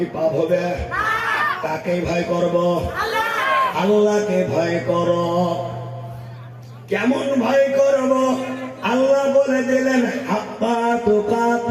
পাপ হবে? কাকে ভয় করব? আল্লাহকে ভয় করো। কেমন ভয় করব? আল্লাহ বলে দিলেন, হাক্কা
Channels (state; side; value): identical; both; correlation 1.00